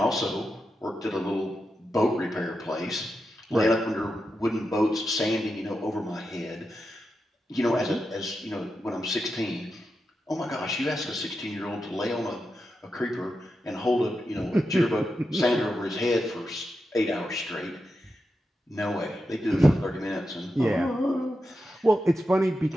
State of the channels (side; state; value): both; normal; correlation 0.88